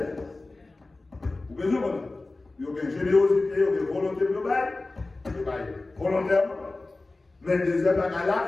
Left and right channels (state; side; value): quieter; right; 3.2 dB